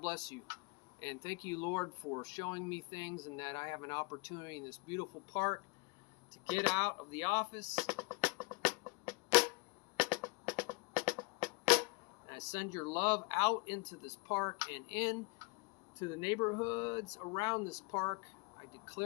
bless you. And thank you, Lord, for showing me things and that I have an opportunity in this beautiful park to get out of the office. I send your love out into this park and in to the neighborhoods around this park. I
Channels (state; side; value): quieter; right; 28.4 dB